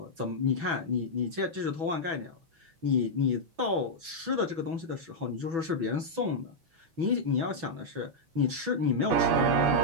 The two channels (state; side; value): late; left; 6.1 ms